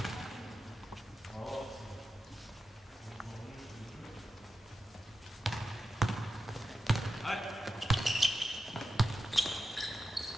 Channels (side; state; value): both; normal; correlation 0.91